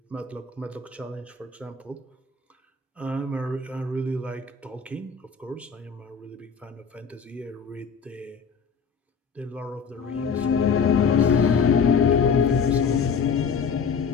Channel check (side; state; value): right; quieter; 5.8 dB